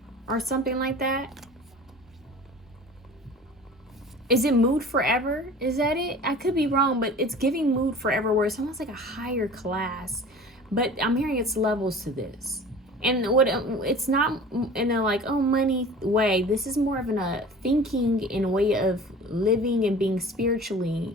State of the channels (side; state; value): both; normal; correlation 0.41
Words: Or something like that? Is it Mood Forever? Is that it? I could be wrong, but it's giving Mood Forever, where it's almost like a higher class. But I'm hearing it's levels to this. And it's not in a like, oh, money way. This is more of a thinking in a way of living and being spiritually